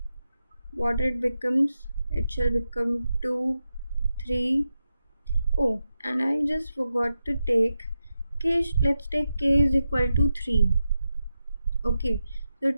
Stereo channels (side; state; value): both; inverted; correlation -0.89